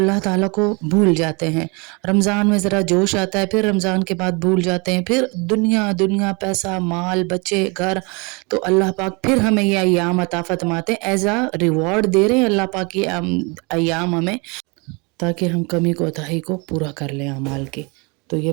ताला को भूल जाते हैं। रमज़ान में ज़रा जोश आता है, फिर रमज़ान के बाद भूल जाते हैं, फिर दुनिया पैसा माल बच्चे घर, तो अल्लाह पाक फिर हमें ये अय्याम अता फरमाते हैं, एज अ रिवॉर्ड दे रहे हैं अल्लाह पाक ये अय्याम हमें, ताकि हम कमी कोताही को पूरा कर लें अमाल के। तो ये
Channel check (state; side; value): quieter; left; 29.8 dB